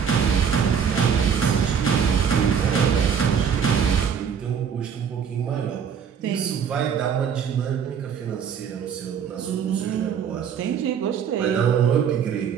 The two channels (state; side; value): quieter; left; 7.4 dB